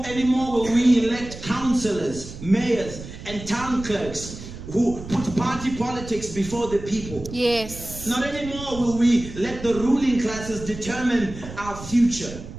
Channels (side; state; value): right; noise; rumble, 12 dB below the sound